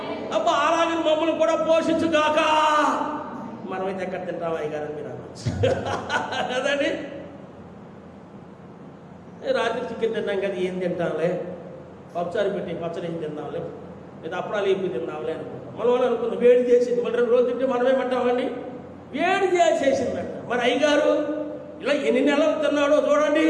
అబ్బా అలాగే మమ్మల్ని కూడా పోషించుగాక. మనమైతే ఎక్కడ తింటాం అయ్యగారు మీరు కదండి. రాత్రి చికెన్ తిన్నాం కదా, ఏం తింటాంలే, పప్పుచారు పెట్టి పచ్చడి ఏం తిందాంలే, లేదా అప్పుడాలు ఏపీ తిందాంలే అనుకుంటాం. మనం అనుకుందాం వేడి చేసింది. మళ్ళీ 2 రోజులు తింటే మనమేమంటామండి? వేడి చేసేసిందంట. మరి అయ్యగారు ఇలా ఎన్ని నెలలు తిన్నాడో చూడండి.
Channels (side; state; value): both; identical; correlation 1.00